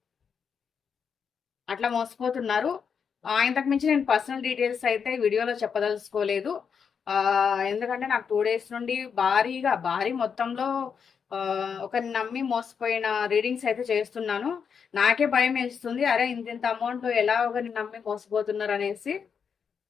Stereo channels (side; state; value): right; quieter; 6.6 dB